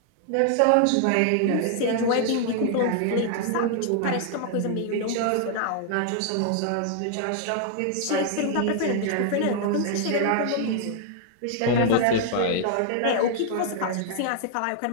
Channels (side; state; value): both; different; correlation 0.00